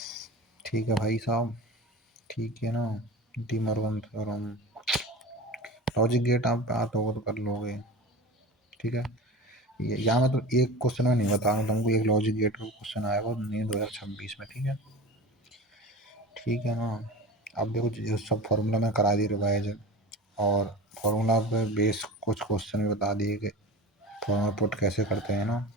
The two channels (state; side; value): normal; both; correlation 0.32